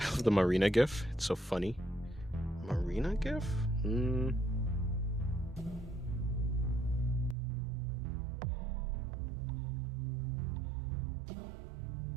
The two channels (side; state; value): left; drops out; at 7.4 s